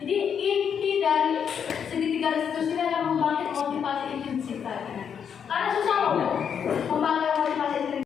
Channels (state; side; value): quieter; right; 7.6 dB